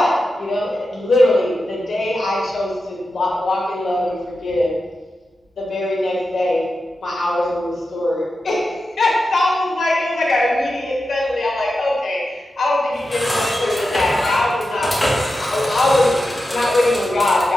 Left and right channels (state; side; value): normal; both; correlation 0.91